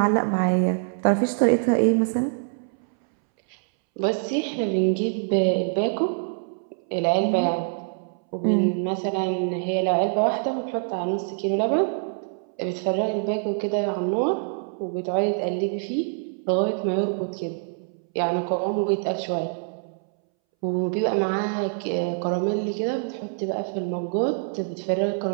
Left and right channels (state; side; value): silent; left; 62 dB below the other